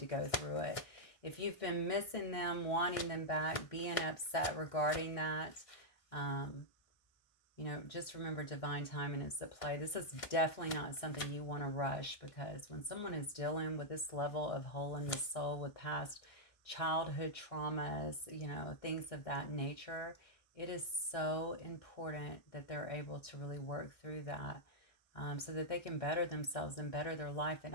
go through it. If you've been missing them, wanting them back, being upset regarding that, you know, just remember divine timing is at play. This is definitely not something you want to rush, because when someone is dealing with this level of hole in the soul with past childhood traumas, you know, things of that nature, it is so important that they're able to really work through that. So that they can better themselves and better their life. And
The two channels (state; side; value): late; right; 1.6 ms